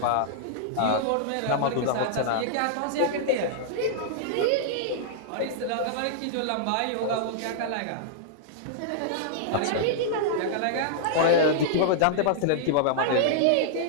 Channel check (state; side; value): different; both; correlation -0.01